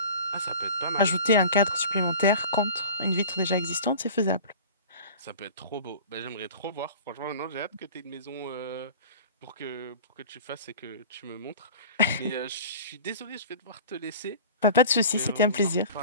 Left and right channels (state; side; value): inverted; both; correlation -0.39